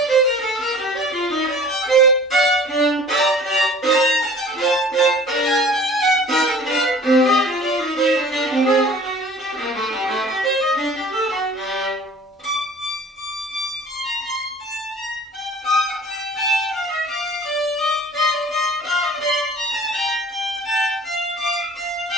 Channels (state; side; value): normal; both; correlation 0.47